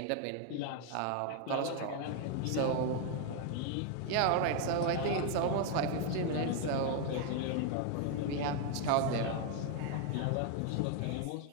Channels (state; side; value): different; both; correlation 0.00